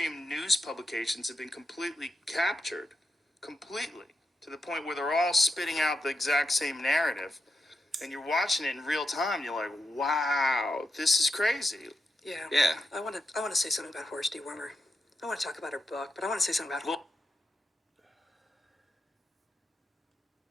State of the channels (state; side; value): normal; both; correlation 0.86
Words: news publications have been completely captured, completely, to the point where they're all spitting out the exact same narrative. And you're watching it in real time, you're like, wow, this is crazy. Yeah. I want to say something about Horse Dewormer. I want to talk about her book, but I want to say something about